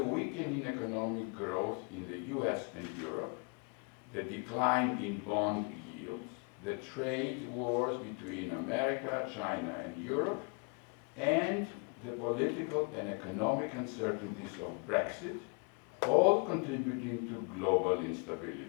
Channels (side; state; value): right; quieter; 36.6 dB